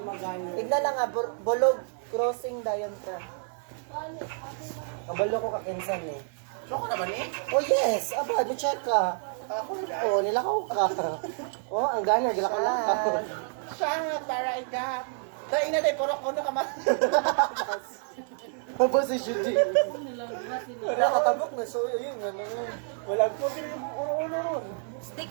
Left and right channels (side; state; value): left; silent; 59 dB below the other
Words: Tignan lang nga, bulog crossing dayon ka. Kabalo ko ka-cancel eh. Soko na ba ni? Oh yes! Aba, check ka. Ako na. Oh, nilakaw ka. Oh, ang gana, gilakaw ka. Siya, taray ka. Dahil na dahil, puro ko na kama. Aba si Judy. Wala katabok na, so yun, ano. Walang po yung puro-ulo ron. Stick